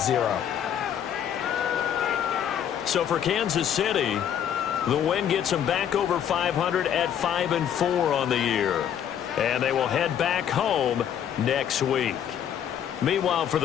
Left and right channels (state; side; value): quieter; right; 9.4 dB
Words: 0. So for Kansas City, the win gets them back over 500 at 5-4 on the year. And they will head back home next week. Meanwhile, for